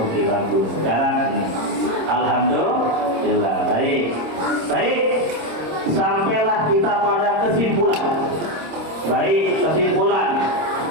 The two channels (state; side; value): late; left; 26 ms